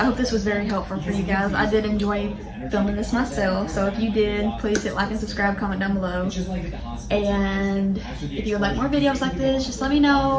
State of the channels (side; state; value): both; identical; correlation 1.00